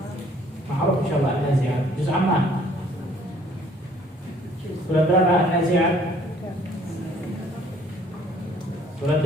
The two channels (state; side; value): normal; both; correlation 0.59